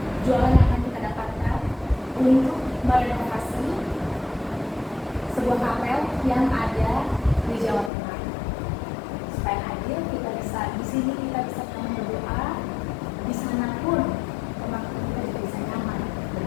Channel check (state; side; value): drops out; right; at 7.9 s